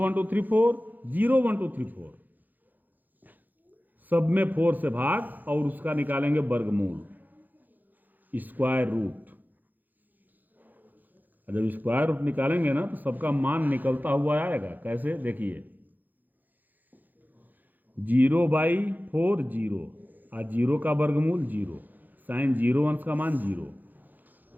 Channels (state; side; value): late; left; 0.085 ms